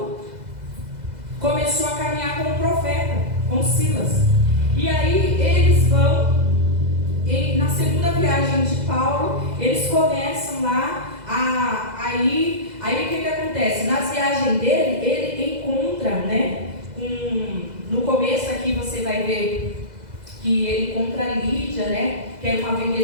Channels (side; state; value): left; late; 2.0 ms